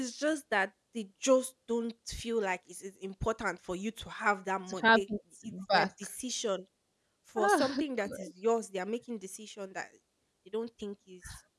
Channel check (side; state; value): both; identical; correlation 1.00